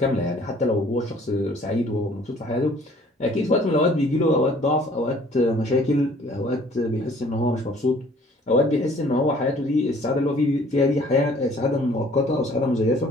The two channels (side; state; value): both; normal; correlation 0.55